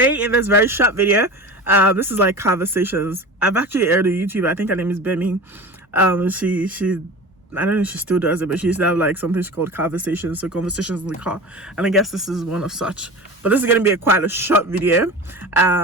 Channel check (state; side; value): normal; both; correlation 0.33